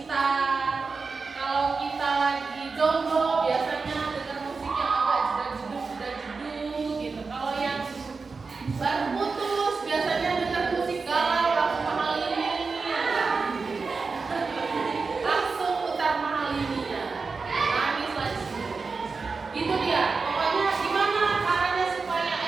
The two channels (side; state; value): left; quieter; 4.5 dB